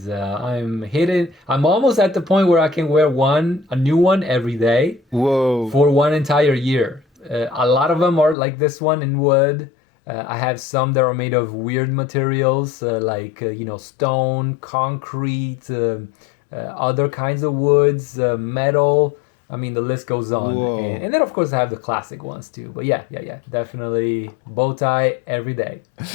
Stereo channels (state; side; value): drops out; right; at 8.3 s